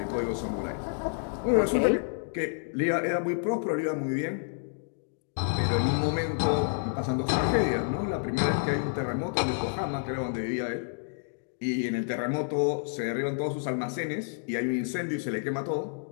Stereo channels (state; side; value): silent; right; digital silence